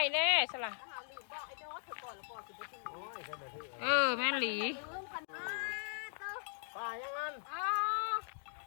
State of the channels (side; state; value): right; silent; digital silence